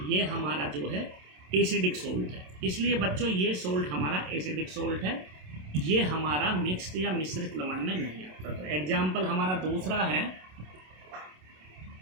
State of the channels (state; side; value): late; left; 27 ms